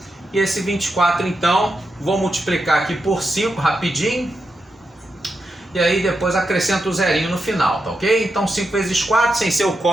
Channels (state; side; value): normal; both; correlation 0.87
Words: e esse 24 então, vou multiplicar aqui por 5 rapidinho, e aí depois acrescento o zerinho no final, tá ok? Então 5 vezes 4, sem ser o